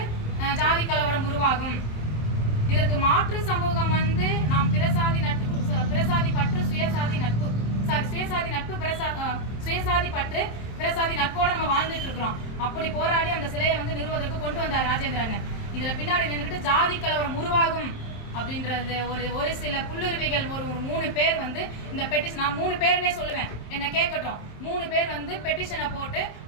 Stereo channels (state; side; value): late; right; 27 ms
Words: ஜாதி கலவரம் உருவாகும். இதற்கு மாற்று சமூகம் நாம் பிரசாதி பற்று சுயசாதி நட்பு சுயசாதி பற்று பிரசாதி நட்போட நம்ம வாழ்ந்துட்டு இருக்கிறோம். அப்படி போராடி அந்த சிலையை நிறுவதற்கு கொண்டு வந்தார் ராஜேந்திர அண்ணன். இதுல பின்னாடி நின்றுட்டு ஜாதி கலவரம் உருவாகும் அப்படின்றது ஒரு சில புல்லுருவிகள் ஒரு 3 பேர் இந்த பெட்டிஷன், நான் 3 பேருன்னே சொல்லுவேன், என்ன கேட்கட்டும், 3 பேர் பெட்டிஷனை போட்டு